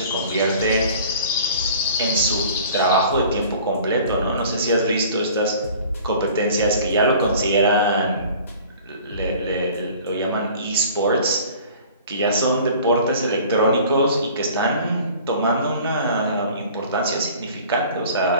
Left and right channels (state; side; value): inverted; both; correlation -0.47